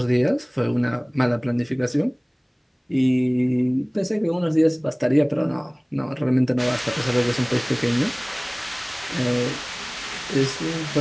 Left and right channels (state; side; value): identical; both; correlation 1.00